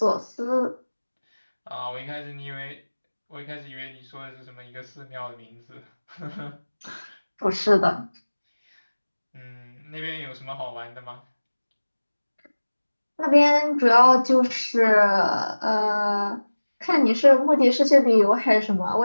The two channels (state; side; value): inverted; both; correlation -1.00